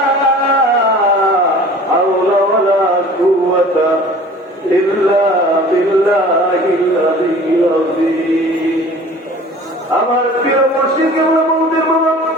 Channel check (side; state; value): both; normal; correlation 0.45